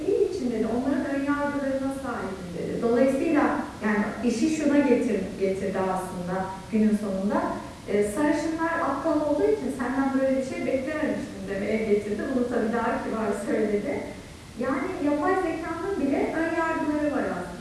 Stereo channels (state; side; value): identical; both; correlation 1.00